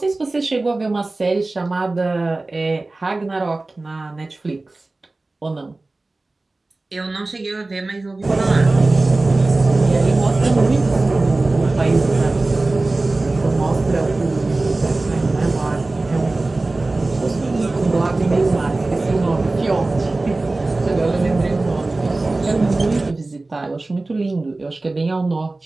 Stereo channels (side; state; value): left; quieter; 3.1 dB